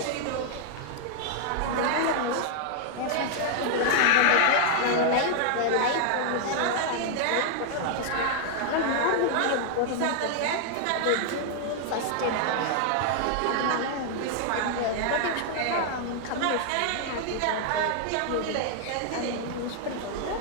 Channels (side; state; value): both; different; correlation 0.00